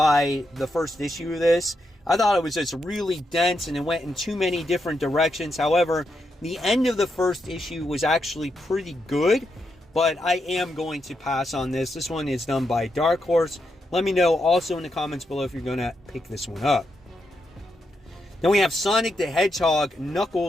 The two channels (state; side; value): normal; both; correlation 0.83